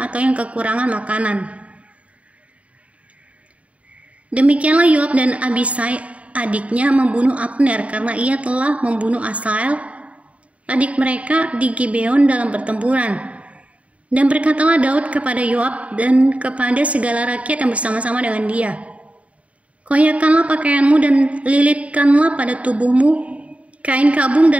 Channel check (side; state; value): left; late; 0.065 ms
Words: atau yang kekurangan makanan." Demikianlah Yoab dan Abisai adiknya membunuh Abner karena ia telah membunuh Asael, adik mereka, di Gibeon dalam pertempuran. Dan berkatalah Daud kepada Yoab dan kepada segala rakyat yang bersama-sama dengan dia, "Koyakkanlah pakaianmu dan lilitkanlah pada tubuhmu kain kabung